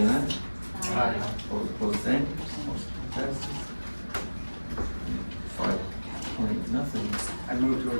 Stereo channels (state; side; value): inverted; both; correlation -1.00